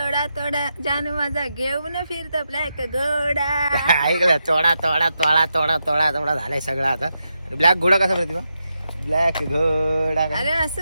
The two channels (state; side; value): inverted; both; correlation -0.86